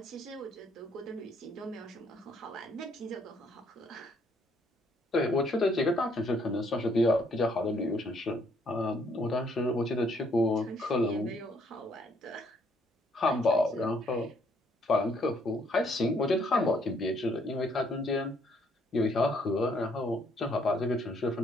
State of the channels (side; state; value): both; normal; correlation 0.68